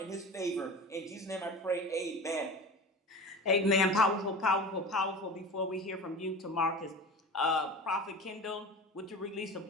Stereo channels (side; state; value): both; normal; correlation 0.32